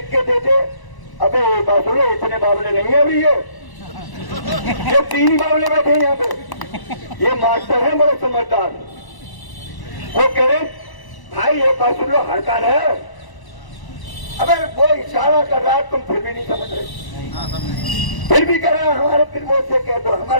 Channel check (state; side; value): late; right; 1.0 ms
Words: के दे दे। अबे बात सुनो, इतने बावले नहीं है अभी ये 3 ही बावले बैठे हैं यहाँ पे। ये मास्टर है बड़े समझदार, वो कह रहे भाई ये बात सुन लो, हड़ताल है। अबे वो इशारा कर रहा है, तुम फिर भी नहीं समझ रहे, फिर भी कह रहे हैं हमारे प्रमोद से कह दो,